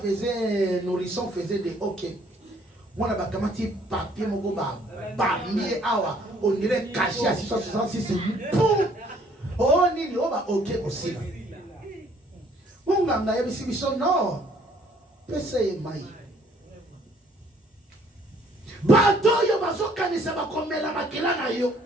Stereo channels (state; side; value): normal; both; correlation 0.61